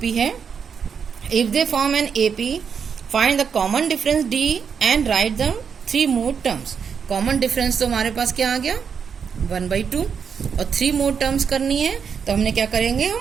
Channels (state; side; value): quieter; left; 6.7 dB